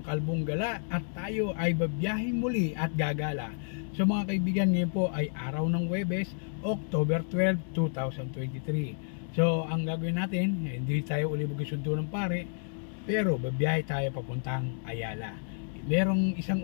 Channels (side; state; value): right; silent; digital silence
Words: Kalbong Gala at tayo ay babiyahing muli at gagala. So mga kaibigan, ngayon po ay araw ng Huwebes, October 12, 2023. So ang gagawin natin, hindi tayo uli magsundo ng pare, pero babiyahe tayo papuntang Ayala. Merong